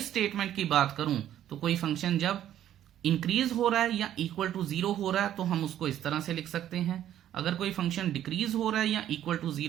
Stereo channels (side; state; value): left; quieter; 11.4 dB